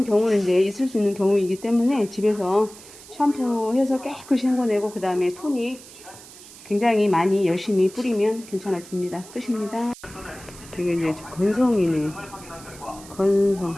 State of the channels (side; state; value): right; noise; hiss, 19 dB below the sound